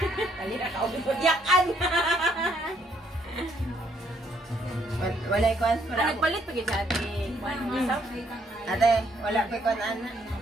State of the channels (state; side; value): normal; both; correlation 0.69